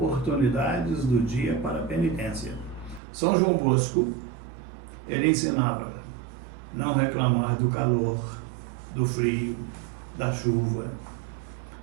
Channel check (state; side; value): drops out; left; at 3.0 s